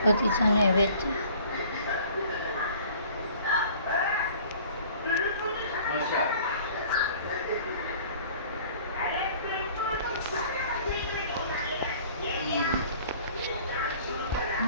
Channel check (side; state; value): both; inverted; correlation -0.50